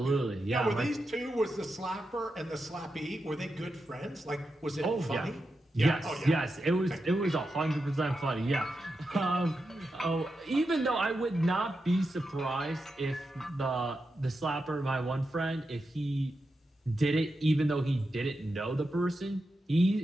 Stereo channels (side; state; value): both; normal; correlation 0.88